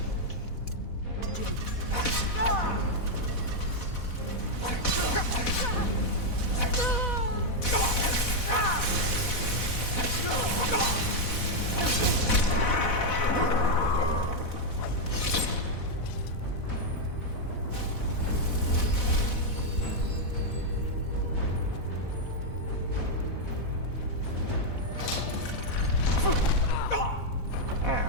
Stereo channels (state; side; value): late; right; 4.1 ms